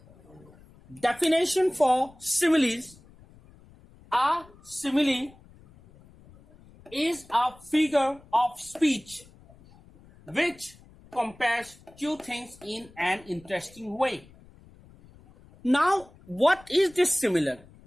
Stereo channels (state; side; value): noise; left; rumble, 25 dB below the sound